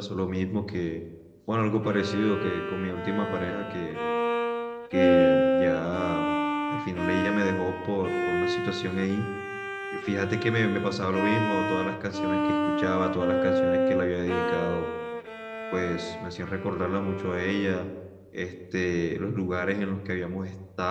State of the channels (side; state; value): both; identical; correlation 1.00